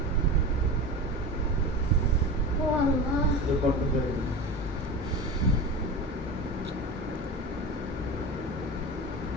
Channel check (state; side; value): normal; both; correlation 0.29